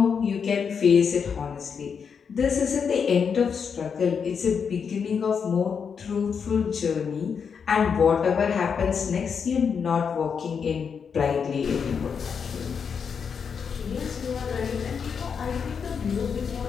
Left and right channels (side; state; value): right; quieter; 6.5 dB